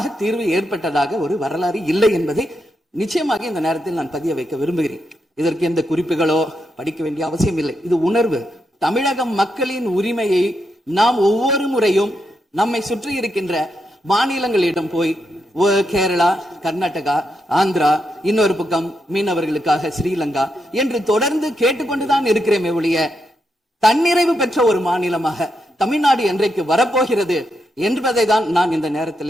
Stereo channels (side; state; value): both; normal; correlation 0.83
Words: தீர்வு ஏற்பட்டதாக ஒரு வரலாறு இல்லை என்பதை நிச்சயமாக இந்த நேரத்தில் நான் பதிய வைக்க விரும்புகிறேன். இதற்கு எந்த குறிப்புகளோ படிக்க வேண்டிய அவசியம் இல்லை. இது உணர்வு. தமிழக மக்களின் உரிமையை நாம் ஒவ்வொரு முறையும் நம்மை சுற்றி இருக்கின்ற மாநிலங்களிடம் போய் கேரளா, கர்நாடகா, ஆந்திரா, இன்னொரு பக்கம் மீனவர்களுக்காக ஸ்ரீலங்கா என்று தொடர்ந்து கேட்டுக்கொண்டுதான் இருக்கிறேமே ஒழிய தன்னிறைவு பெற்ற ஒரு மாநிலமாக தமிழ்நாடு என்றைக்கு வரப்போகிறது என்பதை தான் நான் இந்த